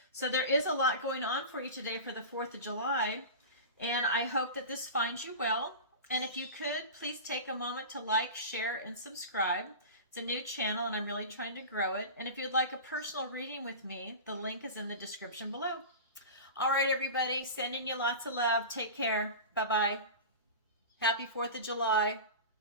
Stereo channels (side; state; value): both; inverted; correlation -0.30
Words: So there is a lot going on for you today for the 4th of July, and I hope that this finds you well. And if you could, please take a moment to like, share, and subscribe. It's a new channel, and I'm really trying to grow it. And if you'd like a personal reading with me, the link is in the description below. All right, everybody, sending you lots of love. Take care. Bye-bye. Happy 4th of July.